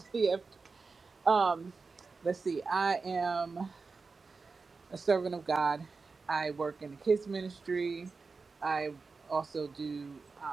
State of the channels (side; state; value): left; quieter; 4.4 dB